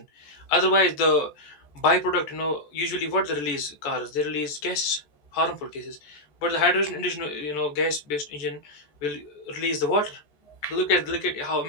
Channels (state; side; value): late; right; 14 ms